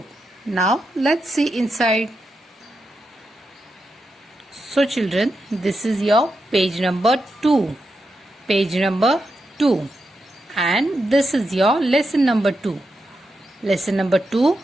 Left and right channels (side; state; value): both; normal; correlation 0.86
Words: Now let's see inside. So children, this is your page number 2. Page number 2. And this is your lesson number 2. Lesson number 2,